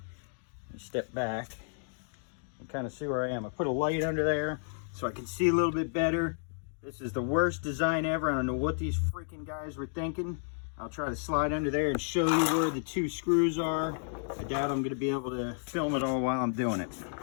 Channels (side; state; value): right; silent; digital silence